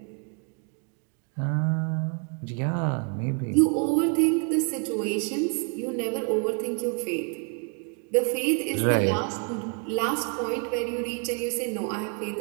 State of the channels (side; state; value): left; quieter; 38.3 dB